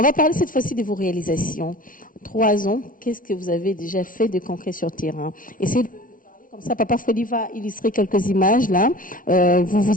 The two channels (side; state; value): right; late; 0.39 ms